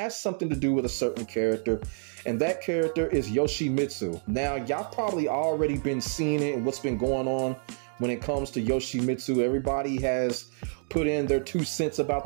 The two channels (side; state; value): left; silent; 59 dB below the other